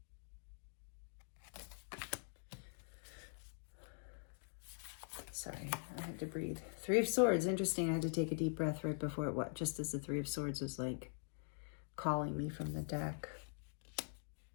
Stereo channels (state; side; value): silent; right; digital silence